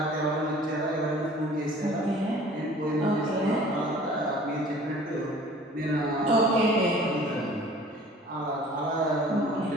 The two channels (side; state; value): both; normal; correlation 0.49